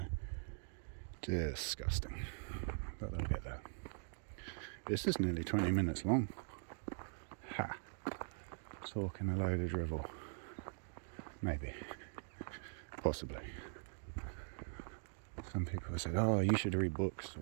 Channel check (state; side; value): silent; left; digital silence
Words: Disgusting. But they'll get there. This is nearly 20 minutes long. Ha! Talking a load of drivel. Maybe. Possibly. Some people have said, oh, you should read books,